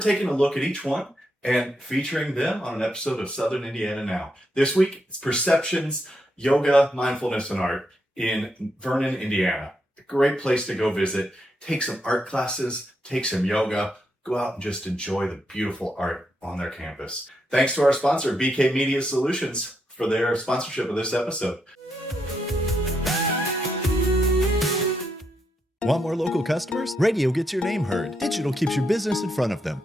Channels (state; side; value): normal; both; correlation 0.81